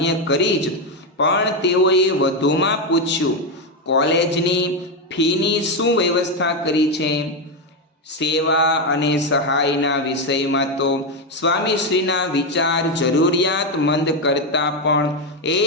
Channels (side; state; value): both; normal; correlation 0.08